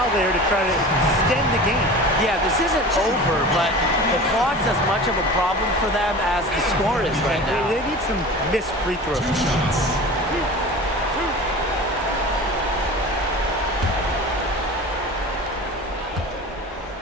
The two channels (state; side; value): normal; both; correlation 0.36